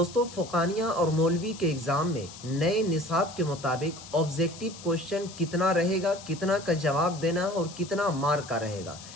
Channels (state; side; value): noise; left; hiss, 16 dB below the sound